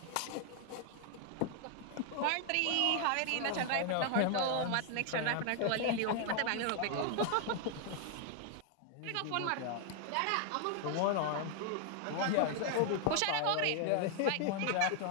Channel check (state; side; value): different; both; correlation 0.00